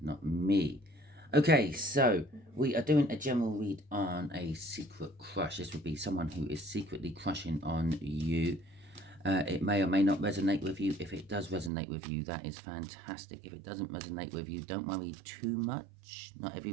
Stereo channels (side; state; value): left; drops out; at 11.7 s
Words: not me. Okay, so we are doing a general read on a secret crush. This would be someone who is secretly crushing on you. It may or may not resonate with you. If it does resonate with you, that is fantastic. If it doesn't resonate with you, don't worry too much. Not every